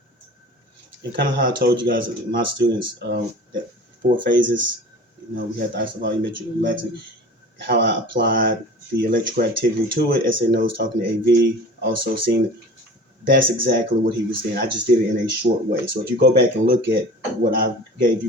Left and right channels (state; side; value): normal; both; correlation 0.40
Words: And kind of how I told you guys, my students, that 4 phases, you know, we had the isovolumetric relaxing, how I applied the electrical activity to it. SNO was talking to AV, also seeing that's exactly what he was saying. I just did it in a short way. So if you go back and look at what I gave you